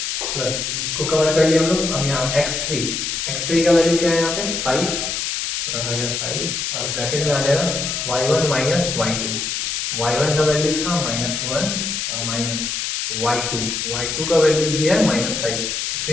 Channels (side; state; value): left; noise; hiss, 2 dB below the sound